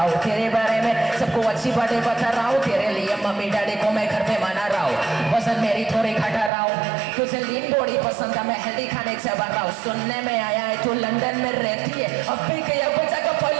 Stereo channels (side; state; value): left; drops out; at 6.5 s